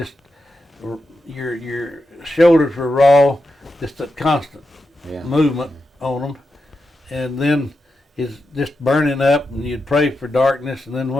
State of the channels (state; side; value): normal; both; correlation 0.88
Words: your shoulders were raw, just a constant movement on them, and then it's just burning up, and you'd pray for darkness, and then